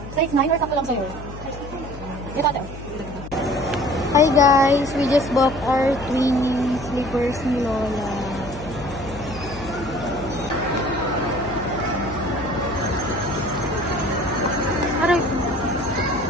Size 9 or sakto lang sa'yo? Ito, ate. Hi guys, we just bought our twin slippers ni Lola. Aray.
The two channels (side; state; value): left; noise; hum, 12 dB below the sound